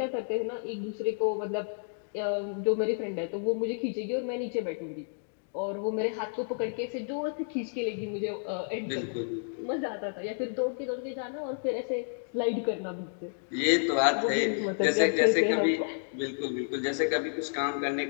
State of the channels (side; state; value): right; silent; digital silence